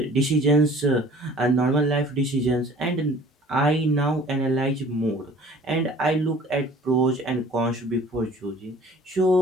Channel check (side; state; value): both; normal; correlation 0.49